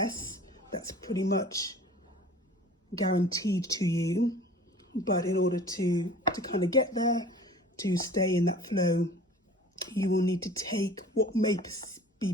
that's pretty much guaranteed to you. But in order to kind of get there, to stay in that flow, you will need to take what may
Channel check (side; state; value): both; normal; correlation 0.45